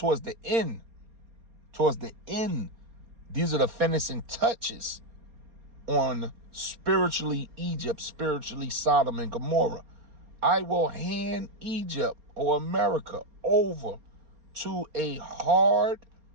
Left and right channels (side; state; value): left; late; 4.3 ms